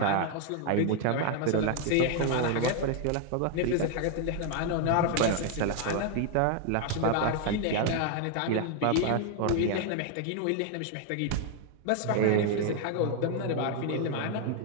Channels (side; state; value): both; different; correlation 0.00